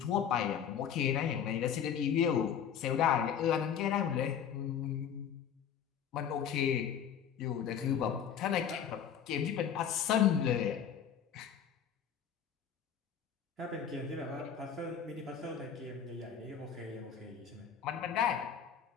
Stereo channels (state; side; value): quieter; right; 8.2 dB